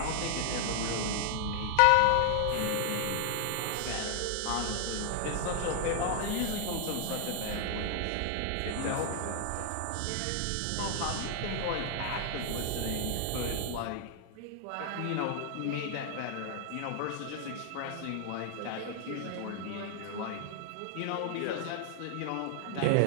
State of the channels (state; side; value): different; both; correlation 0.00